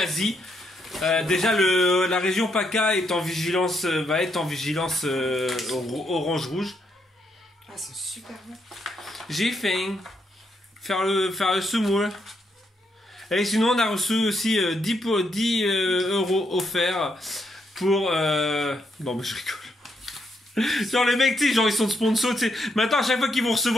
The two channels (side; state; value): both; normal; correlation 0.78